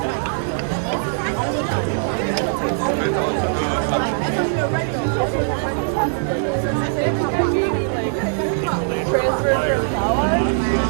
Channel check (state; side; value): silent; left; 64 dB below the other